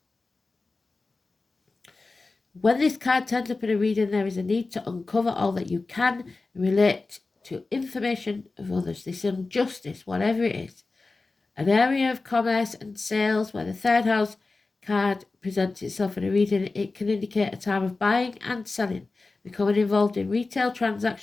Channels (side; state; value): right; quieter; 3.6 dB